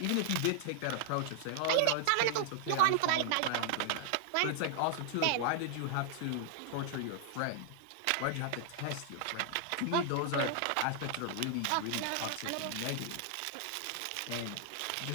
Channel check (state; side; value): different; both; correlation 0.00